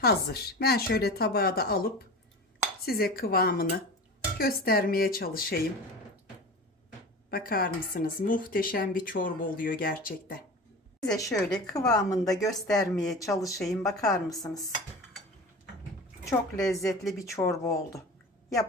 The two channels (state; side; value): normal; both; correlation 0.33